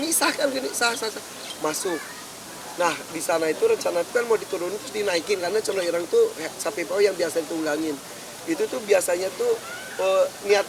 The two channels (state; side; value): identical; both; correlation 1.00